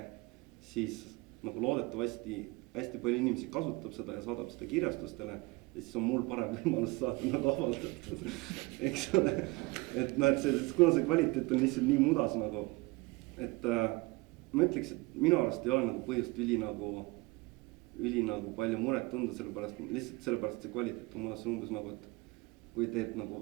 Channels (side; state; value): left; quieter; 24.1 dB